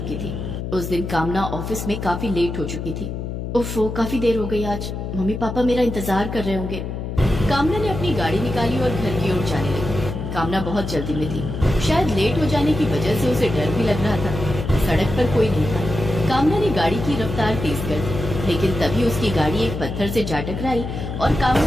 थी। उस दिन कामना ऑफिस में काफी लेट हो चुकी थी। उफ़, काफी देर हो गई आज। मम्मी पापा मेरा इंतजार कर रहे होंगे। कामना ने अपनी गाड़ी निकाली और घर की ओर जाने लगी। कामना बहुत जल्दी में थी। शायद लेट हो जाने की वजह से उसे डर भी लग रहा था। सड़क पर कोई नहीं था। कामना ने गाड़ी की रफ्तार तेज कर दी, लेकिन तभी उसकी गाड़ी एक पत्थर से जा टकराई और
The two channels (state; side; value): noise; left; hum, 5 dB below the sound